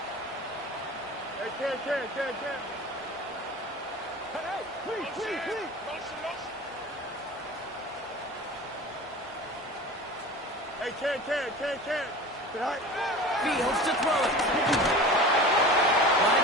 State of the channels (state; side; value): normal; both; correlation 0.36